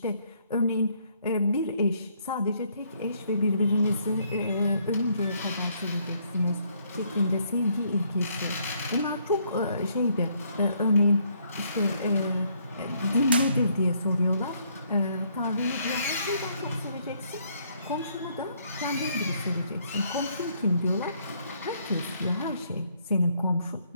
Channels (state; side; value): inverted; both; correlation -0.69